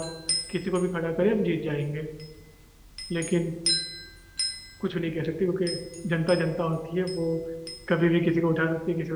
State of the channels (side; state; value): both; identical; correlation 1.00